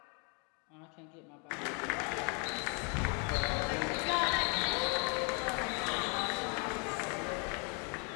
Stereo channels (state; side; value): quieter; right; 35.6 dB